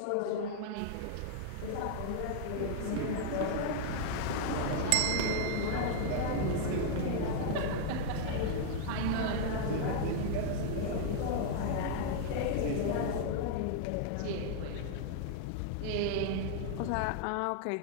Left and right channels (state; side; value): different; both; correlation -0.01